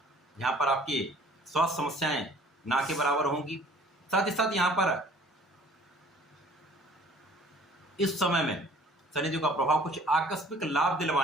यहाँ पर आपकी स्वास्थ्य समस्याएं ना के बराबर होंगी। साथ ही साथ यहाँ पर इस समय में शनिदेव का प्रभाव कुछ आकस्मिक लाभ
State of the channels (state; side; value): normal; both; correlation 0.53